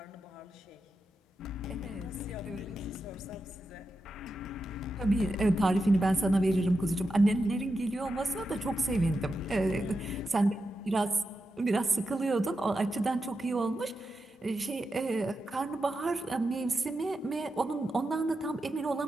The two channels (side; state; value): both; normal; correlation 0.88